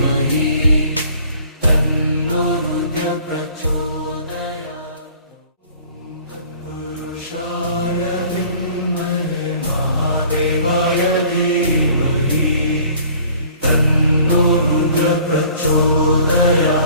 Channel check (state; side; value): inverted; both; correlation -0.52